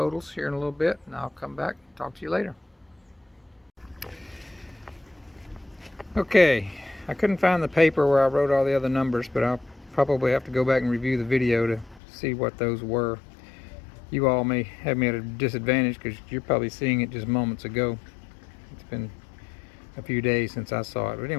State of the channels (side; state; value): right; drops out; at 12.0 s